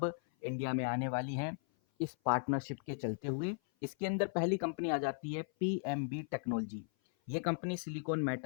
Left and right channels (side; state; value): right; silent; 53 dB below the other